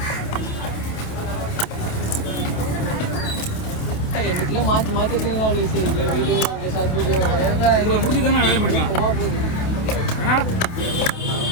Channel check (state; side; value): late; right; 28 ms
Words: மாற்றி மாற்றி வீடியோ உங்களை முடிச்சு தானே வேலை முடிப்பேன். ஏன்னா